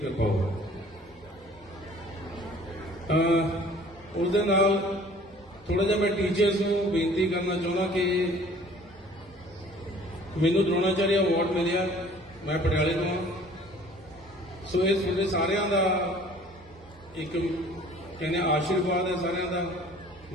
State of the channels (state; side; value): normal; both; correlation 0.51